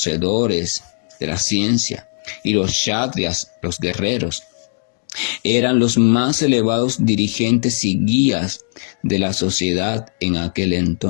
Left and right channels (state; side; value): silent; right; digital silence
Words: de la ciencia, y los kshatriyas, los guerreros, eran los más elevados dirigentes y guías de la sociedad en aquel